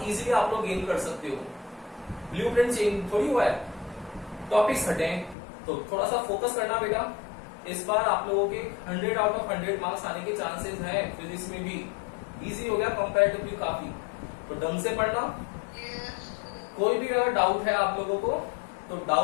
इजीली आप लोग गेन कर सकते हो. ब्लूप्रिंट चेंज थोड़ी हुआ है, टॉपिक्स हटे, तो थोड़ा सा फोकस करना बेटा. इस बार आप लोगों के 100 आउट ऑफ 100 मार्क्स आने के चांसेस हैं. फिजिक्स में भी इजी हो गया कंपैरेटिवली काफी, तो ढंग से पढ़ना. कोई भी अगर डाउट है आप लोगों को, तो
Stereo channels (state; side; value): drops out; right; at 5.4 s